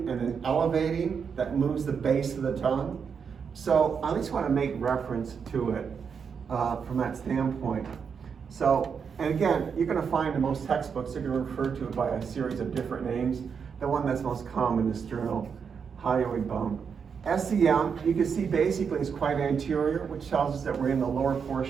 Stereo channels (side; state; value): left; quieter; 6.4 dB